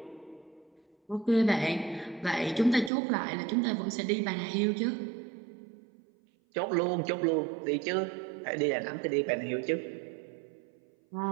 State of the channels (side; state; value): left; drops out; at 2.9 s